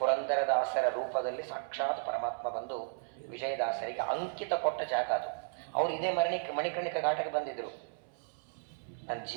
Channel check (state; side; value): silent; left; 55 dB below the other